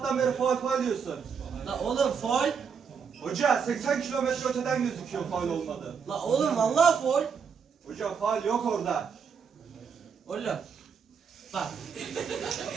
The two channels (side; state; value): left; quieter; 6.4 dB